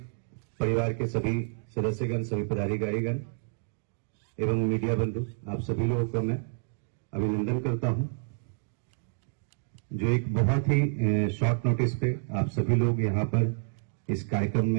परिवार के सभी सदस्यगण, सभी पदाधिकारीगण एवं मीडिया बंधु, आप सभी लोगों को मैं अभिनंदन करता हूं, जो एक बहुत ही शॉर्ट नोटिस पे आप सभी लोग यहां पर इस कार्यक्रम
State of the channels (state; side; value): silent; left; digital silence